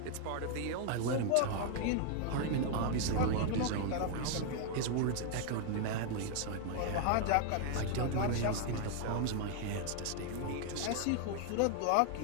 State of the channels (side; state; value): both; different; correlation 0.00